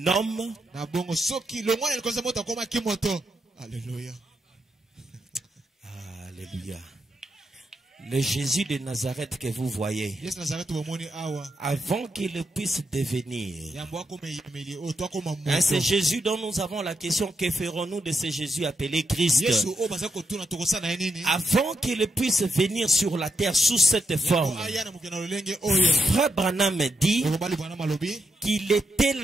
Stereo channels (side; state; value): both; normal; correlation 0.83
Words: homme, Alléluia. Alléluia. Le Jésus de Nazareth que vous voyez, Yesu Nazareth bomoni awa. avant qu'il puisse devenir, Yambo akoma yemeli o to akoma hein, c'est moto. Jésus dont nous avons la question, que ferons-nous de ce Jésus appelé Christ? Yesu o baza kotuna tokosana ye nini? Avant qu'il puisse venir sur la terre sous cette forme, Yambo aya na mokena lolenge oyo. Frère Branham dit Okobali bwana malobi. qu'il était